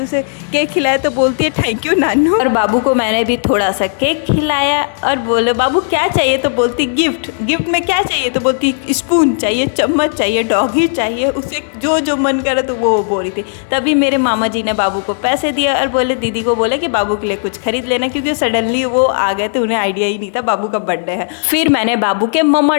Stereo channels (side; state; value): right; silent; digital silence